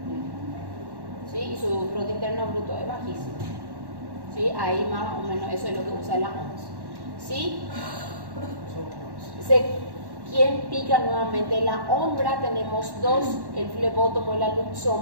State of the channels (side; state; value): left; late; 1.1 ms